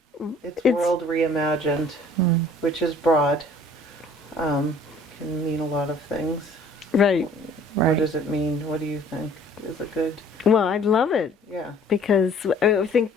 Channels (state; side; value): normal; both; correlation 0.54